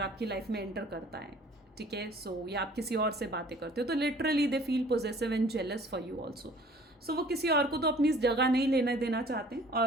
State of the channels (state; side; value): normal; both; correlation 0.52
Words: लाइफ में एंटर करता है, ठीक है, सो या आप किसी और से बातें करते हो तो literally they feel possessive and jealous for you also. So वो किसी और को तो अपनी जगह नहीं लेना देना चाहते हैं,